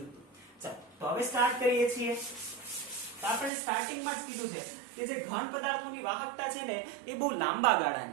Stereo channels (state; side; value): drops out; left; at 3.5 s